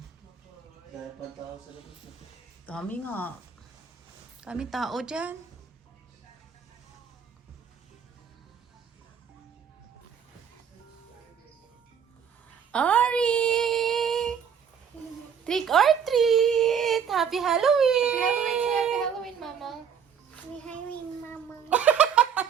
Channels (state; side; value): quieter; left; 7.5 dB